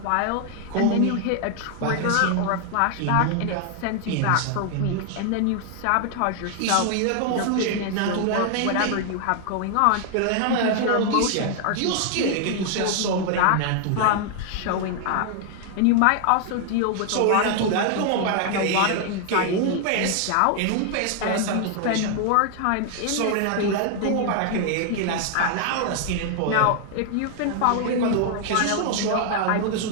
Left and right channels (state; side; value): different; both; correlation 0.00